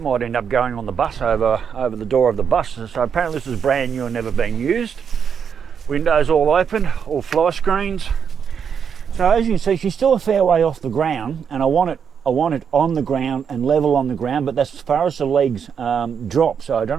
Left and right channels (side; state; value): left; quieter; 7.1 dB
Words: might end up going on the bus over the door of the bus. So apparently this is brand new and never been used. Windows all open, all fly screens. So as you can see, she's still a fair way off the ground, and I want it on the ground and level on the ground, but that's as far as the legs drop. So I don't